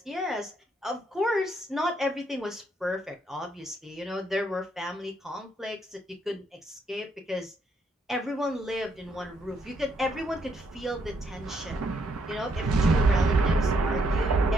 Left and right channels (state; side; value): normal; both; correlation 0.73